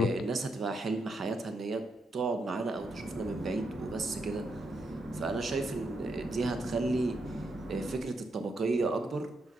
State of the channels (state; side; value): normal; both; correlation 0.81